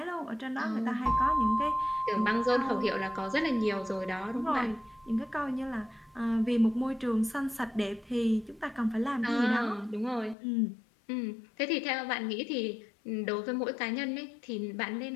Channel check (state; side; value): drops out; right; at 10.4 s